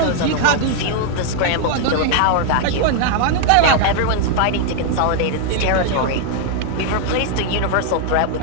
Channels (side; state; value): both; different; correlation 0.00